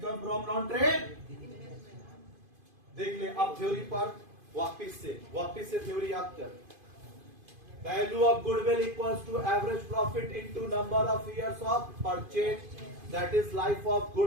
from non trade. देख ले अब थ्योरी पर वापिस से थ्योरी याद कर। Value of goodwill equals to average profit into number of years of purchase, that is life of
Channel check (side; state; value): left; late; 2.5 ms